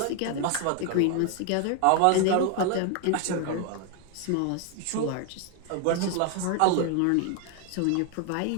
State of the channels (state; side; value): different; both; correlation 0.01